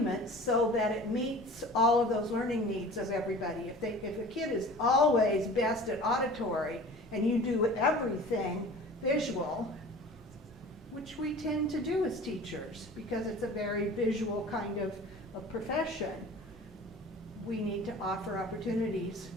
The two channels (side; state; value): both; normal; correlation 0.42